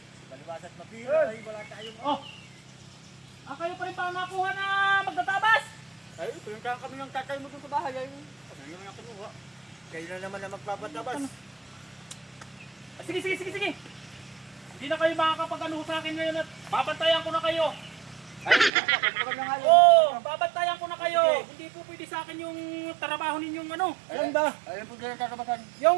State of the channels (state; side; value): drops out; left; at 18.7 s